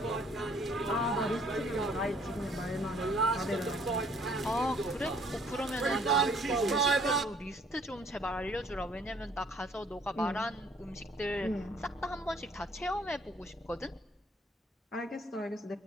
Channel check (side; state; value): both; normal; correlation 0.60